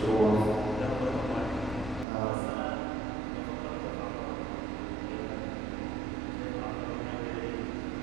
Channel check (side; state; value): left; drops out; at 2.1 s